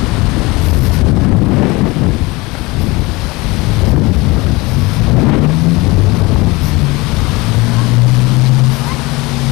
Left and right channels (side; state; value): right; quieter; 23.2 dB